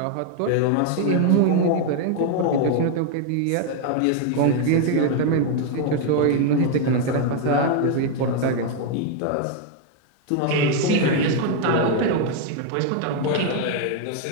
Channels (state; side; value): different; both; correlation 0.00